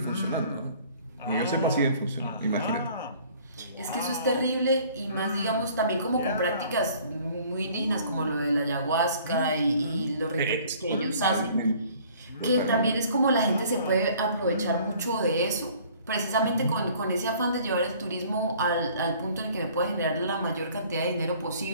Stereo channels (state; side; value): inverted; both; correlation -0.54